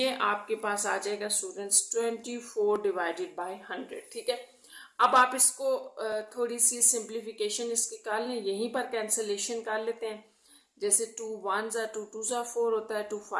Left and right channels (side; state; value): both; identical; correlation 1.00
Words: आपके पास आ जाएगा स्टूडेंट्स 24 डिवाइडेड बाय 100। ठीक है, अब आप इसको थोड़ी सी सिंप्लीफिकेशन इसकी कर लें, यहीं पर कैंसलेशन कर लेते हैं। जैसे 2 1 ज़ा 2 2 ज़ा 4 होता है, 2